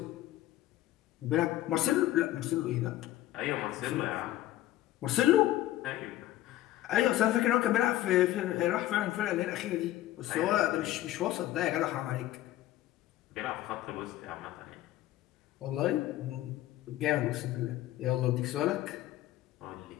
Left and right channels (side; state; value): right; quieter; 14.7 dB